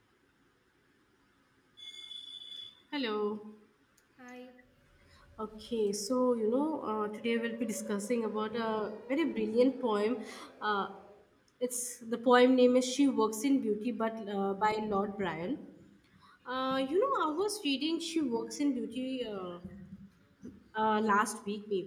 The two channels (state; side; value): identical; both; correlation 1.00